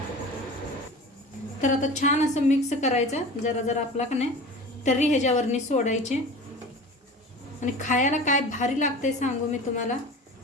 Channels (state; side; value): normal; both; correlation 0.36